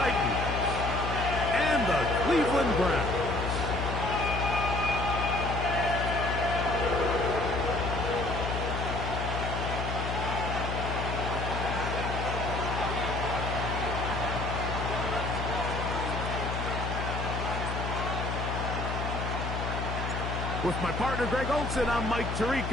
and the Cleveland Browns. With my partner, Greg Olson, I'm Mike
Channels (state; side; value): noise; left; hum, 3 dB below the sound